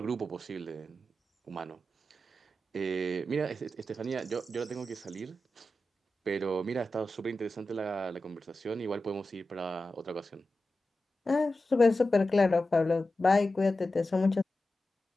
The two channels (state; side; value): normal; both; correlation 0.92